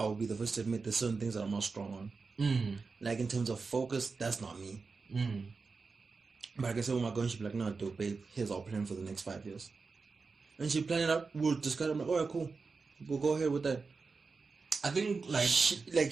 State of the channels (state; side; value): quieter; left; 4.5 dB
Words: be the first to admit there's certain things that I'm not strong on. Like, in terms of focus, that's not me. But I can say, with my girl, she'll be like, no, dude, babe, here's our plan for the next 5 years. And she planned it out. We'll discuss it. I'm like, alright, cool. We'll go ahead with that. I think, like...